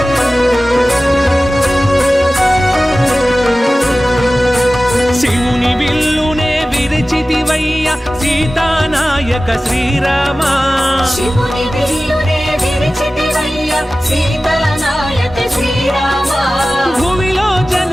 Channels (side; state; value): both; normal; correlation 0.96